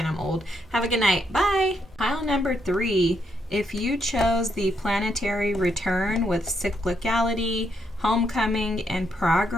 I'm old. Have a good night. Bye. Pile number 3 If you chose the planetary return with cyclicality, homecoming, and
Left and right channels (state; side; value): normal; both; correlation 0.77